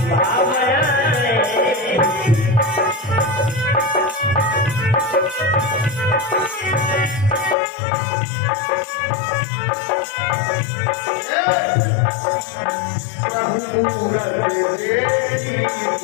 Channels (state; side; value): drops out; right; at 7.6 s